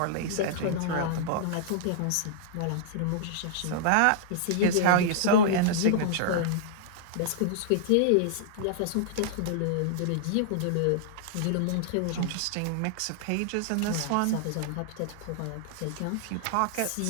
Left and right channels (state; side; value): different; both; correlation -0.01